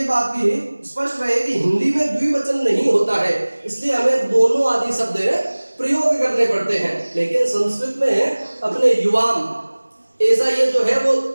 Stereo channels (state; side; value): inverted; both; correlation -1.00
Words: बात भी स्पष्ट रहे कि हिंदी में द्विवचन नहीं होता है, इसलिए हमें दोनों आदि शब्द प्रयोग करने पड़ते हैं। लेकिन संस्कृत में अपने युवाम ऐसा ये जो है वो